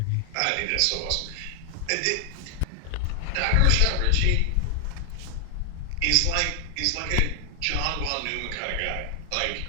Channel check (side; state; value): both; different; correlation 0.00